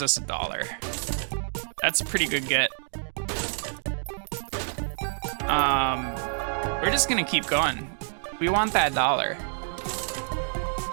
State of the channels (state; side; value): silent; left; digital silence